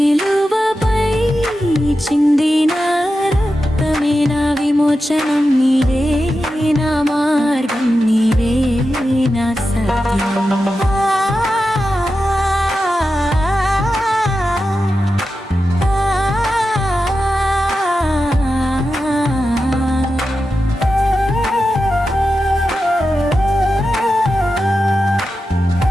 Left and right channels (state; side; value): normal; both; correlation 0.91